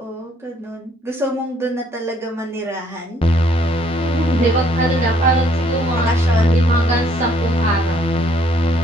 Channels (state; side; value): normal; both; correlation 0.65